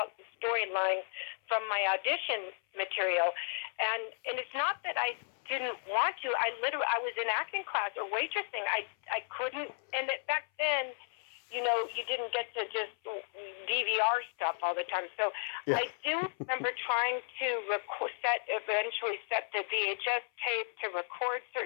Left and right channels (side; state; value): right; silent; 55 dB below the other